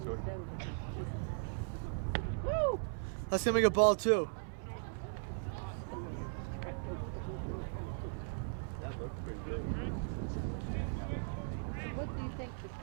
So That's going to make a ball 2. that looked pretty good. What do you think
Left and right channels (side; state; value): left; silent; 52 dB below the other